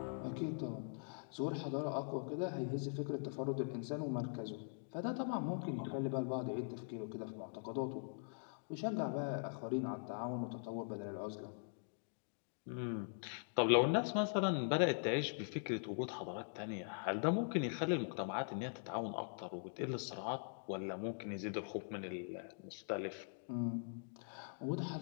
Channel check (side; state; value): right; silent; digital silence